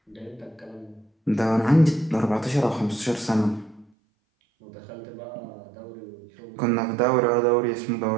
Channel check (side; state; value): left; drops out; at 3.9 s